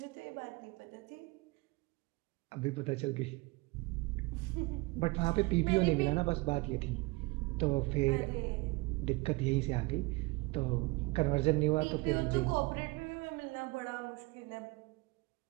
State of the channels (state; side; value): quieter; left; 24.0 dB